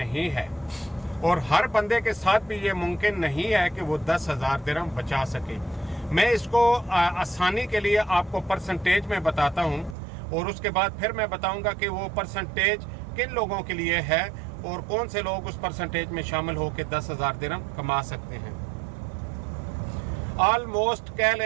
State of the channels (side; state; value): left; drops out; at 10.0 s